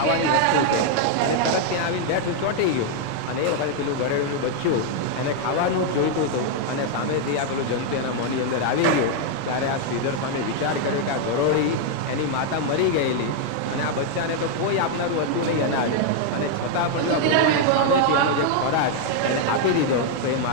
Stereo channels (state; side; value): different; both; correlation 0.00